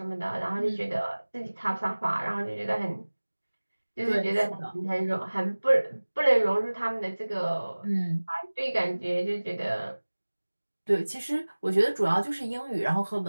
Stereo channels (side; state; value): both; inverted; correlation -1.00